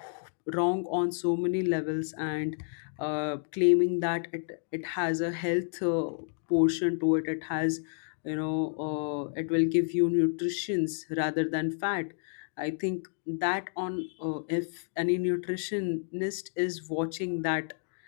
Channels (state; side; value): silent; right; digital silence